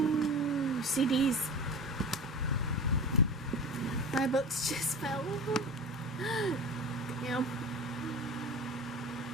CDs. My books just fell. Damn.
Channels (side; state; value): both; normal; correlation 0.33